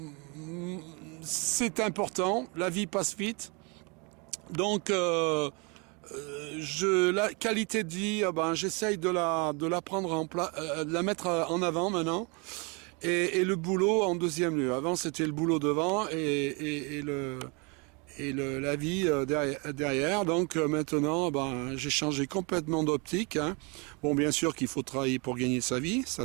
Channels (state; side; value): quieter; left; 31.3 dB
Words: c'est important, la vie passe vite. Donc la qualité de vie, j'essaye de la prendre de la mettre en avant maintenant. Et le boulot en deuxième lieu. Avant, c'était le boulot devant et la vie derrière. Donc maintenant, j'ai changé complètement d'optique. Hein. Bon, bien sûr qu'il faut travailler pour gagner sa vie,